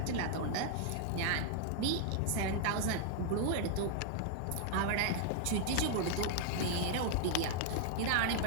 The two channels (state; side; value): different; both; correlation -0.01